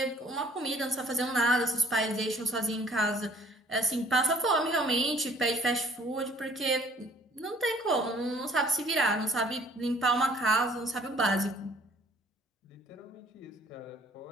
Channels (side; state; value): both; normal; correlation 0.56